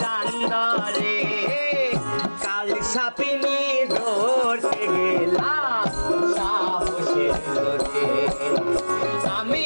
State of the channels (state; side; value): inverted; both; correlation -1.00